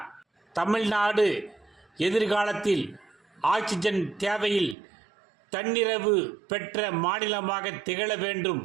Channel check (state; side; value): drops out; left; at 4.8 s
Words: தமிழ்நாடு எதிர்காலத்தில் ஆக்சிஜன் தேவையில் தன்னிறைவு பெற்ற மாநிலமாக திகழ வேண்டும்